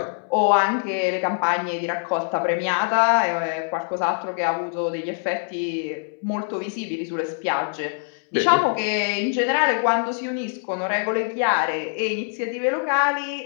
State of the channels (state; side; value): silent; right; 63 dB below the other